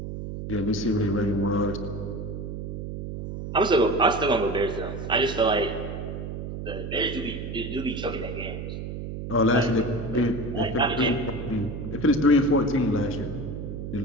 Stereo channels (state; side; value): noise; right; hum, 7 dB below the sound